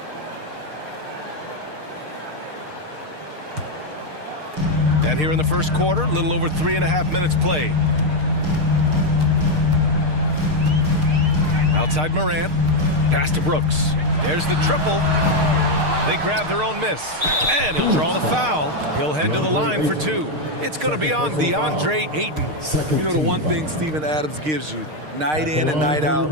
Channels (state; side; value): late; left; 6.5 ms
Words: And here in the first quarter, a little over 3.5 minutes played. Outside Morant. Pass to Brooks. There's the triple. They grab their own miss. And he'll draw the foul. He'll head to the line for two. It's going to be on DeAndre Ayton. You know, the one thing Steven Adams gives you, night in and night out,